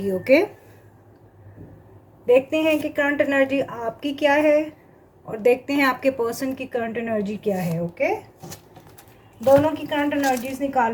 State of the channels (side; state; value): both; identical; correlation 1.00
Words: ओके, देखते हैं कि करंट एनर्जी आपकी क्या है और देखते हैं आपके पर्सन की करंट एनर्जी क्या है। ओके, दोनों की करंट एनर्जीज